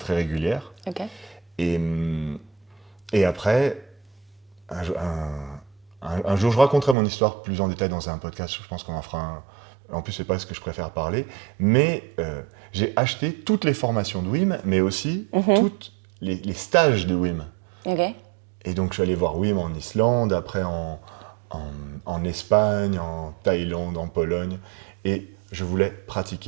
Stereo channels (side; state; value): left; drops out; at 7.0 s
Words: régulière. Ok. Et après, un jour, je raconterai mon histoire plus en détail dans un podcast. Je pense qu'on en fera un. En plus, c'est pas ce que je préfère parler. Mais j'ai acheté toutes les formations de Wim, mais aussi tous les stages de Wim. Ok. Et donc, je suis allé voir Wim en Islande, après en Espagne, en Thaïlande, en Pologne. Et je voulais